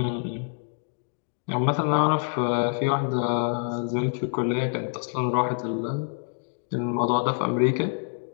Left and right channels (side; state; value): right; silent; digital silence